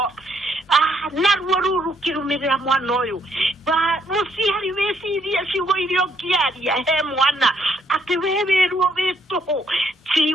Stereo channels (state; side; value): normal; both; correlation 0.70